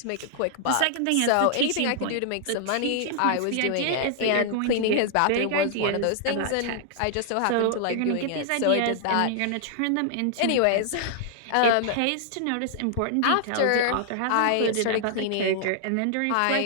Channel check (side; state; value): both; different; correlation -0.01